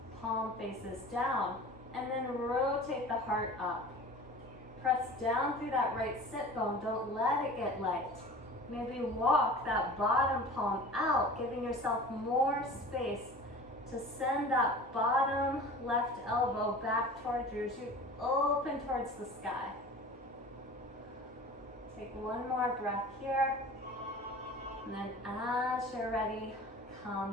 palm faces down, and then rotate the heart up. Press down through that right sit bone, don't let it get light. Maybe walk that bottom palm out, giving yourself more space to send that bottom left elbow back towards you as you open towards the sky. Take one more breath here. And then as you're ready,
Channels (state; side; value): normal; both; correlation 0.40